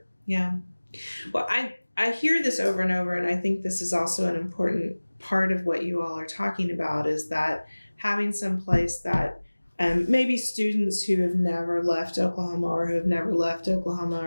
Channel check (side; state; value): both; inverted; correlation -1.00